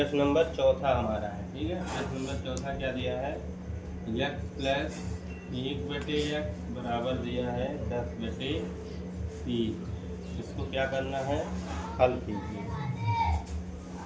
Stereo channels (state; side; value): identical; both; correlation 1.00